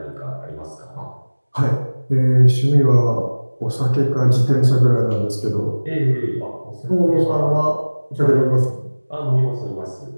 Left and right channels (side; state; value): both; inverted; correlation -1.00